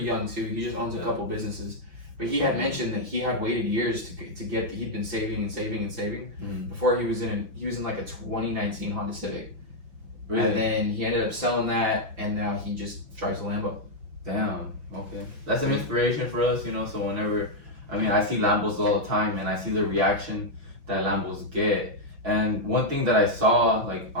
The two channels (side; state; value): left; late; 5.9 ms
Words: too. He just owns a couple businesses, but he had mentioned that he had waited years to get. He'd been saving before he was in like a 2019 Honda Civic. Really? And then he ended up selling that, and now he just drives a Lambo. Damn. Okay. That's an inspiration for us, you know. So whenever, I see Lambos all the time, and I see the reaction that Lambos get. And one thing that I saw, like